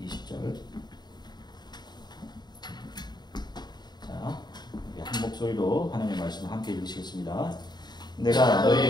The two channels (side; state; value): right; late; 0.20 ms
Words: 20절. 자, 우리 한 목소리로 하나님의 말씀을 함께 읽으시겠습니다. 내가